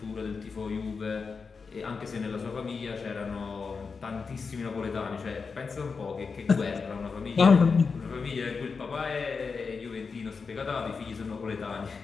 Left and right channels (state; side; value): quieter; right; 5.0 dB